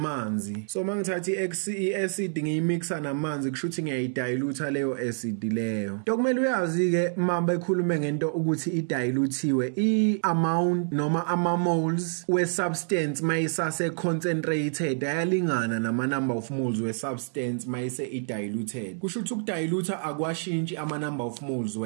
So mangithatha I acid ngiyimixa namanzi kusho ukuthi ngiyayidilute leyo acid leyo. Dokumele uyazi ke mamba ekhulume ngento ukuthi idilutiwe I amount noma ama moles we substance mayisase concentrated ayalingana nama number of moles we substance mayise idiluted. Kusho ukuthi ukudilute akwashintshi ama number of moles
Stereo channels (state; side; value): silent; left; digital silence